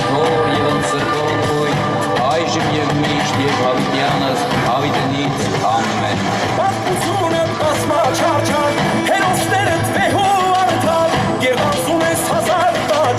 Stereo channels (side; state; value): both; identical; correlation 1.00